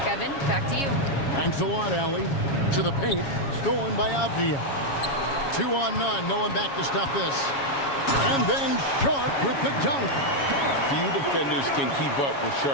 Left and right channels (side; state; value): right; late; 7.2 ms